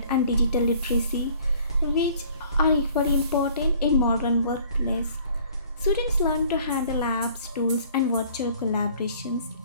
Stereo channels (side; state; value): both; inverted; correlation -0.54